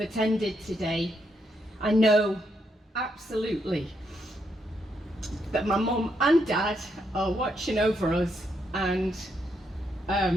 today. I know absolutely that my mum and dad are watching over us and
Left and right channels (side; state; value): both; normal; correlation 0.78